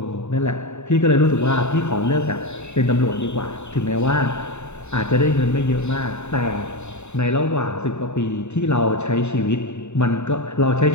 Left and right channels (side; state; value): right; late; 0.82 ms